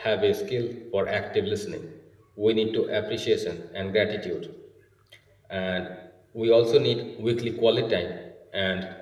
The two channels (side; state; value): both; identical; correlation 1.00